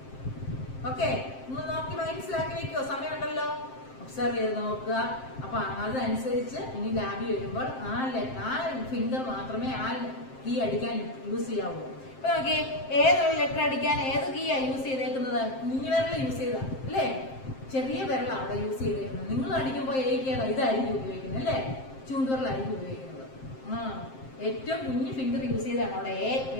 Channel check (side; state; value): right; late; 7.6 ms